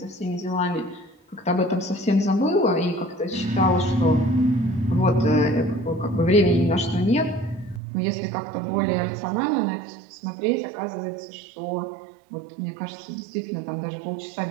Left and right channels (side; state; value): left; drops out; at 7.8 s